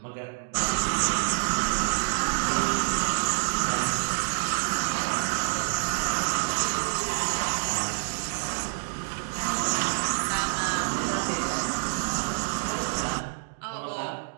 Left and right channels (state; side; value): silent; left; digital silence